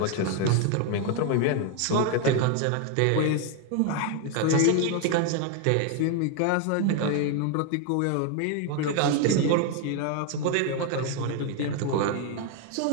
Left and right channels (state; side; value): different; both; correlation 0.01